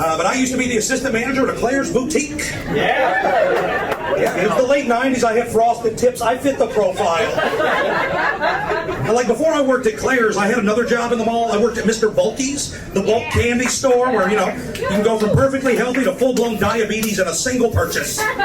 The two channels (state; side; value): identical; both; correlation 1.00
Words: I used to be the assistant manager at a Claire's boutique. Yeah, it was the late 90s. I had frosted tips. I fit the profile. And like before I worked at Claire's, I had another job in the mall. I worked at Mr. Bulky's, the bulk candy store where, you know, you can go from perfectly healthy to full-blown diabetes in a single purchase.